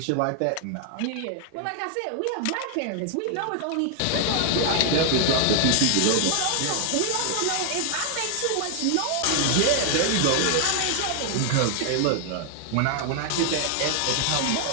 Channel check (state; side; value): different; both; correlation 0.00